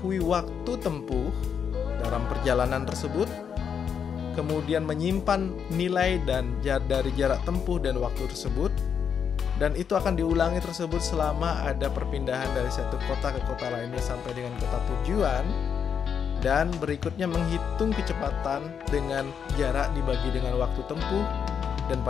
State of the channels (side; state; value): right; quieter; 7.3 dB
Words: waktu tempuh dalam perjalanan tersebut, kemudian menyimpan nilai dan dari jarak tempuh dan waktu tersebut. Dan itu akan diulangi tersebut selama ada perpindahan dari satu kota ke kota lainnya sampai dengan kota tujuan. Dan berikutnya menghitung kecepatan dengan jarak dibagi dengan waktu tempuh. Dan